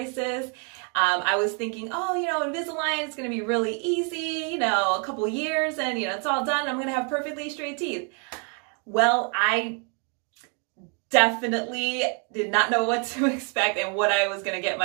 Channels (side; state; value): left; quieter; 38.4 dB